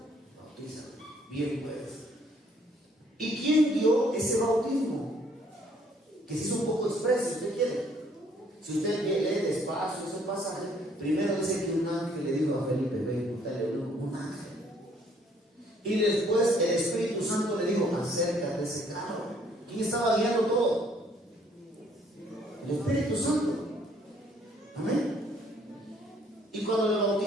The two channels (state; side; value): normal; both; correlation 0.64